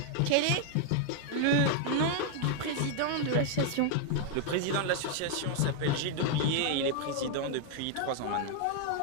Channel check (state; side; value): different; both; correlation 0.00